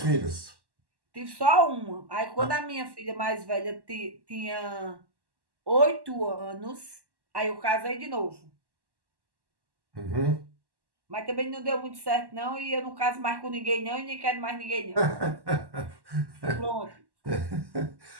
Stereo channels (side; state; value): left; late; 1.1 ms